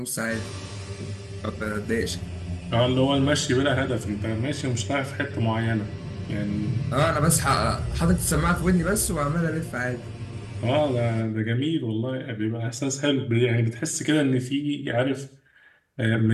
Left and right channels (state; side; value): identical; both; correlation 1.00